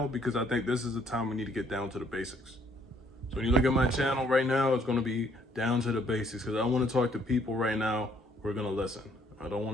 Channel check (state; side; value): normal; both; correlation 0.65